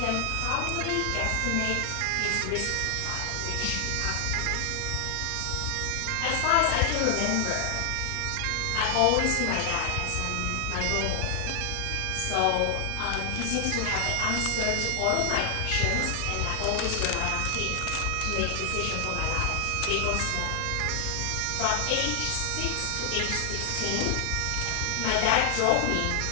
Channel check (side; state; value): both; different; correlation 0.00